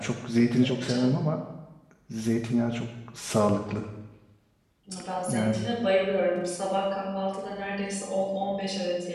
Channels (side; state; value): both; identical; correlation 1.00